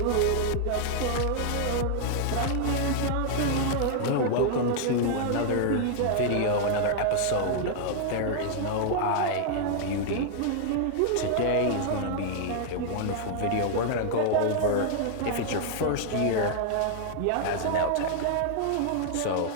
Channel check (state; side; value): different; both; correlation 0.00